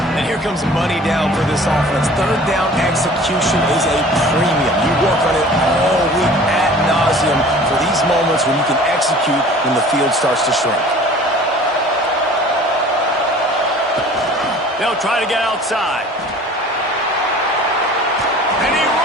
And here comes money down for this offense. 3rd down execution is a premium. You work on it all week ad nauseum for these moments when you can execute when the field starts to shrink. They'll try to get outside. And he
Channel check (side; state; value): both; normal; correlation 0.46